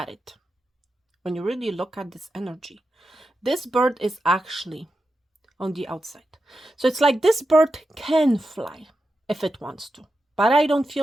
it, when you really look at this energy, this bird is actually on the outside. So it's like this bird can fly if it wants to, but I don't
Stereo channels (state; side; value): normal; both; correlation 0.89